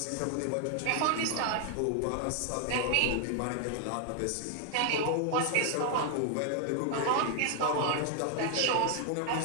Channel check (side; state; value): both; different; correlation 0.00